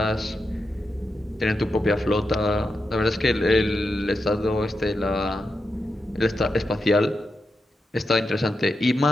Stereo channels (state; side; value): normal; both; correlation 0.87